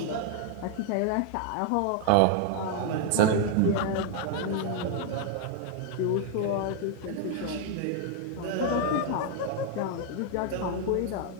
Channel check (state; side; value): different; both; correlation 0.00